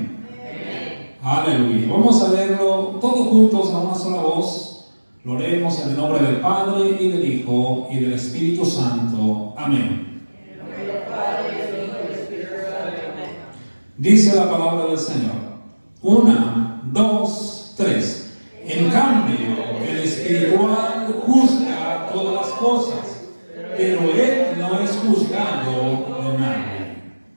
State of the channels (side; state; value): both; inverted; correlation -1.00